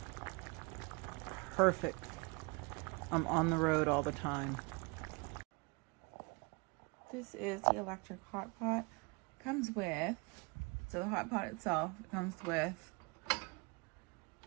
Perfect. I'm on the road all the time. This is the electric hot pot. Comes with, so the hot pot itself, it comes with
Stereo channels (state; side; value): quieter; left; 29.2 dB